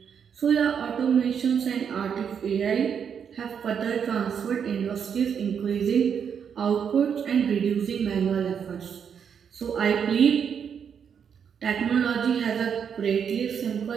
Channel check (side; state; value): left; quieter; 7.5 dB